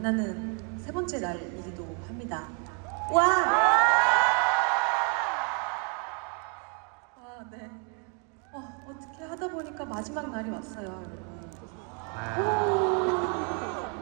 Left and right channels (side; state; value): left; quieter; 38.5 dB